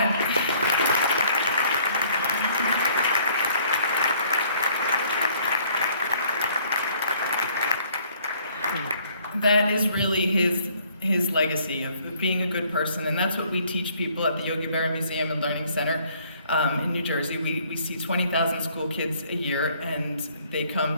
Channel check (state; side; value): inverted; both; correlation -0.61